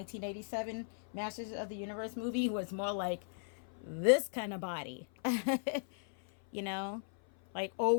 Masters of the Universe movie, was more like this kind of body. You know? Like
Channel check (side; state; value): right; silent; 53 dB below the other